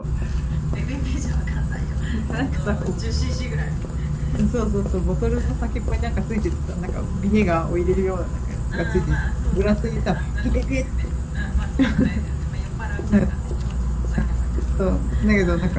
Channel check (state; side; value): identical; both; correlation 1.00